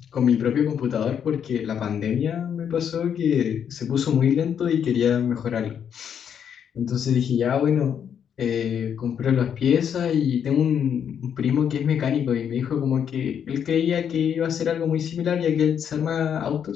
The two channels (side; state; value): right; quieter; 8.3 dB